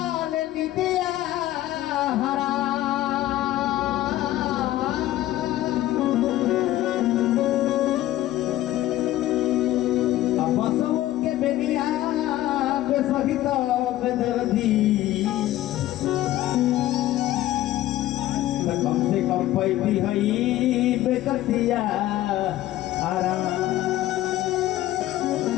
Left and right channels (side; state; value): right; quieter; 14.8 dB